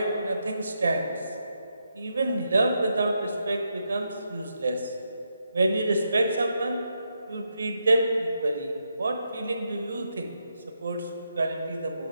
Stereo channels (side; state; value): both; inverted; correlation -0.82